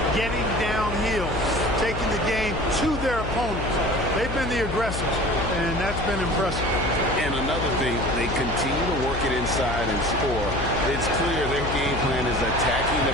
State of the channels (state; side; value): noise; left; hum, 6 dB below the sound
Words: getting downhill, taking the game to their opponents. They've been the aggressors, and that's been impressive. And another thing, they continue to work it inside and score. It's clear their game plan is attacking